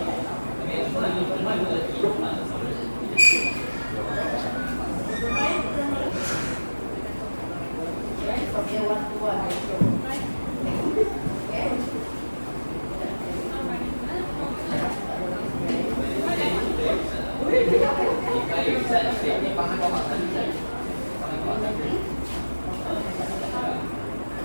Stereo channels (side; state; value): both; inverted; correlation -1.00